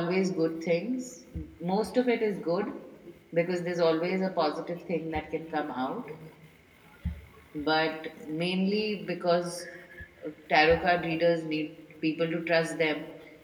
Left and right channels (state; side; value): identical; both; correlation 1.00